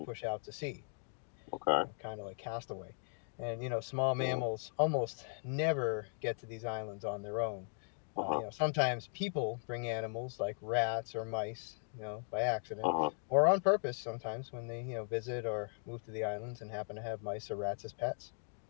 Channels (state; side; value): silent; right; 52 dB below the other